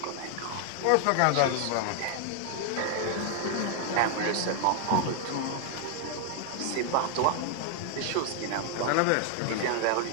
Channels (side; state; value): both; different; correlation 0.00